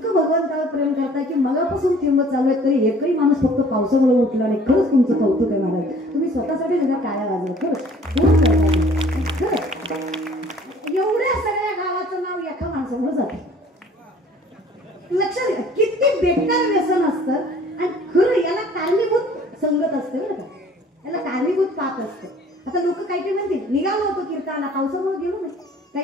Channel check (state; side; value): normal; both; correlation 0.53